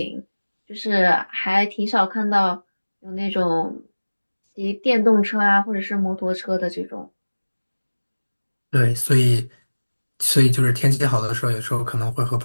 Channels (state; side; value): inverted; both; correlation -1.00